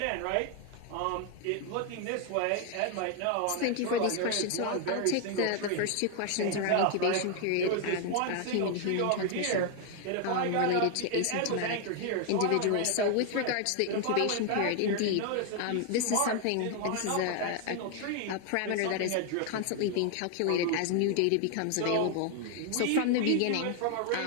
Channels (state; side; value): different; both; correlation 0.00